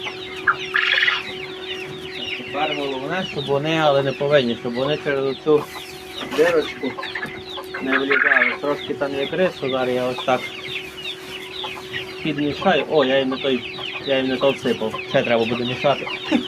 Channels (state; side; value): identical; both; correlation 1.00